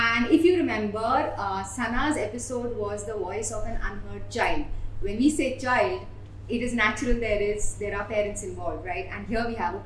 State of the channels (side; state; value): both; identical; correlation 1.00